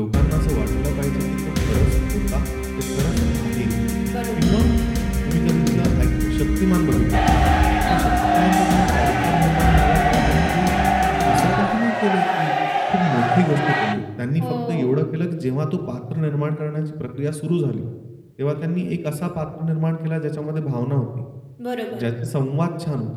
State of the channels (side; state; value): both; identical; correlation 1.00